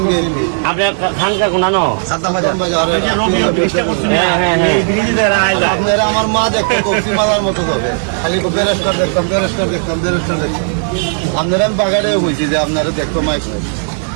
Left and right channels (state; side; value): silent; left; 63 dB below the other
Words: আপনার খানকা কোনানো সাদ্দাম বাজার। আপনারা আমার মা দেখতে কফি মালার মতো হবে, খালি বেরেস্টার দেখতাম বেরেস্টার দেখতাম বেরেস্টার দেখতাম। আপনারা আমি বাগানে বলছি যে আপনারা দেখতো মাছ